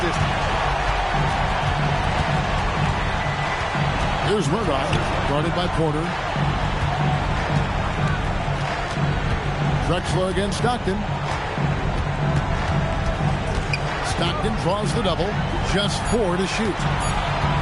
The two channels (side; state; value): both; identical; correlation 1.00